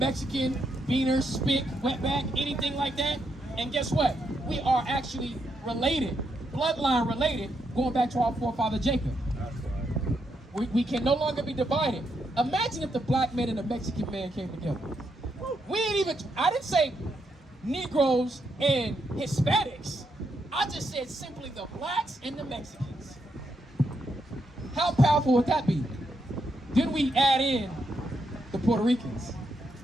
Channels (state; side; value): normal; both; correlation 0.80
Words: beaner, spick, wetback, anything like that. And guess what? We are actually related, bloodline related, going back to our forefather Jacob. We can no longer be divided. Imagine if the black man and the Mexican man came together. I didn't say Negroes and Hispanics. I just said simply the blacks and the Mexicans. How powerful would that be? Then we add in the Puerto Ricans.